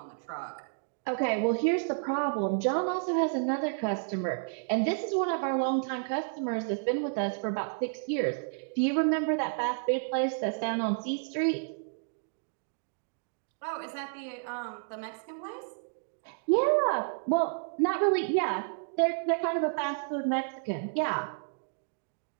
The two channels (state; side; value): silent; left; digital silence